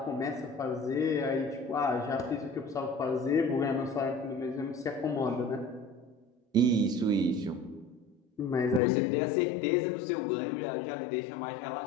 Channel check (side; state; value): right; drops out; at 8.8 s